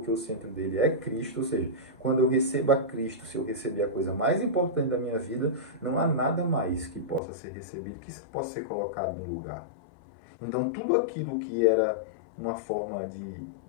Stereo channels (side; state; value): right; drops out; at 7.2 s